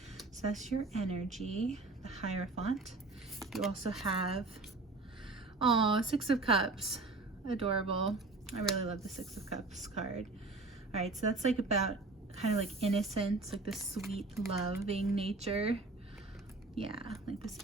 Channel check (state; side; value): quieter; left; 3.4 dB